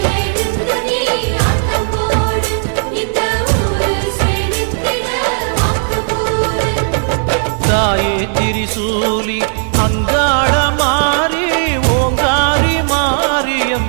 தாயே திரிசூலி அங்காள மாறி ஓங்காரி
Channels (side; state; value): left; silent; digital silence